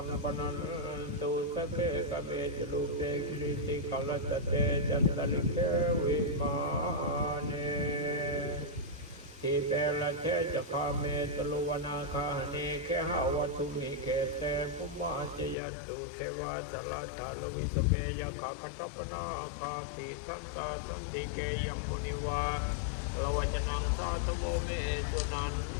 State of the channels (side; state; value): right; drops out; at 15.6 s